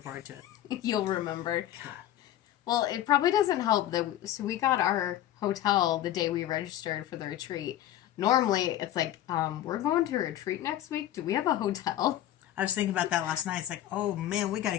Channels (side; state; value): right; quieter; 12.8 dB